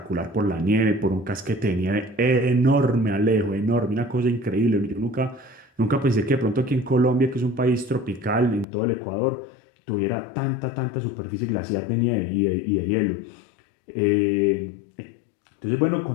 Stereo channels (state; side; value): drops out; right; at 8.7 s